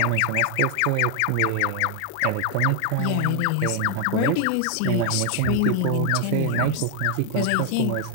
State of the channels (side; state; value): both; different; correlation 0.00